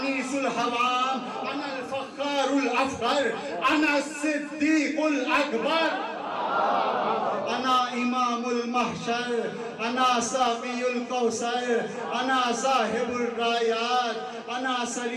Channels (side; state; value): both; identical; correlation 1.00